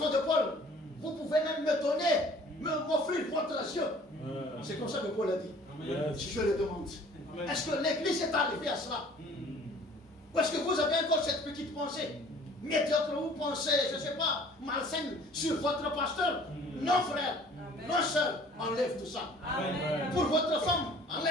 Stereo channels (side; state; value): both; normal; correlation 0.52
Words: de Paul, vous pouvez même me donner, m'offrir votre yeux. C'est comme ça que Paul a dit. Si je le demande. Est-ce que l'église est arrivée à cela? Ou est-ce que vous avez encore cette petite pensée médiocre, vous pensez, je ne sais pas, malsaine sur votre pasteur? Non, frère. Non, sœur, enlève tout ça. Pour votre femme,